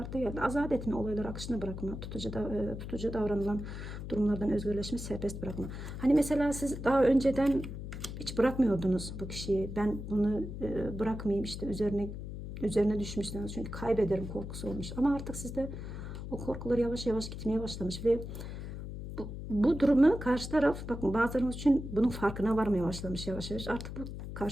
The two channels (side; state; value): left; noise; hum, 8 dB below the sound